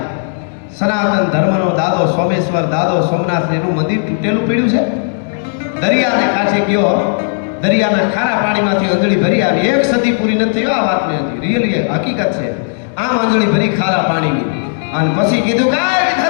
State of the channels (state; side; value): silent; right; digital silence